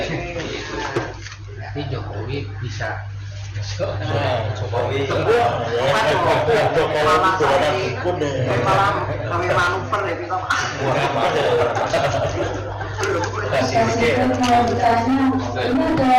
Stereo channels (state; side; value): identical; both; correlation 1.00